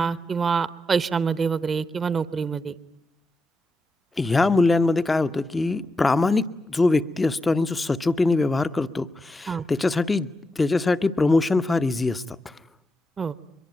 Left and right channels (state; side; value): normal; both; correlation 0.88